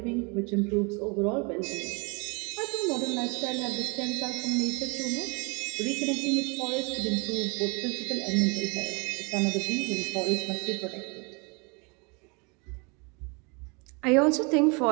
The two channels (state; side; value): quieter; left; 31.2 dB